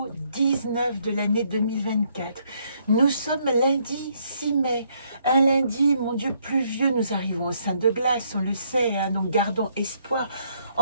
19 de l'année 2024. Nous sommes lundi 6 mai, un lundi, mon Dieu, pluvieux, nous arrivons au sein de glace, on le sait, hein, donc gardons espoir.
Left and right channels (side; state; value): both; inverted; correlation -0.70